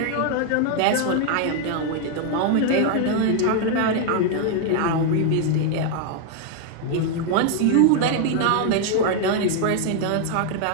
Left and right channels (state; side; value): different; both; correlation 0.00